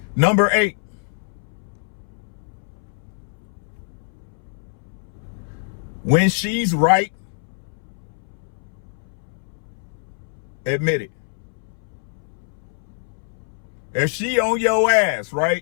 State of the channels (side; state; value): right; silent; 62 dB below the other